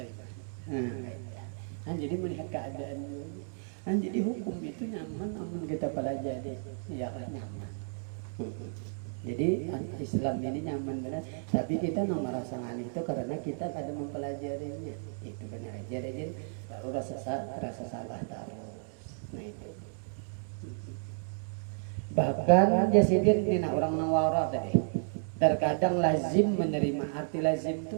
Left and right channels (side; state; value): left; silent; digital silence